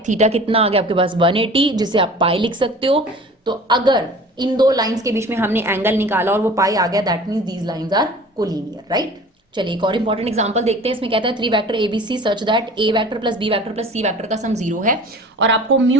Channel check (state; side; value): normal; both; correlation 0.43